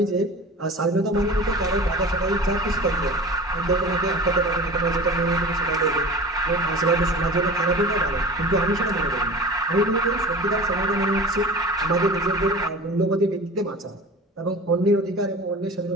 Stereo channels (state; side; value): normal; both; correlation 0.36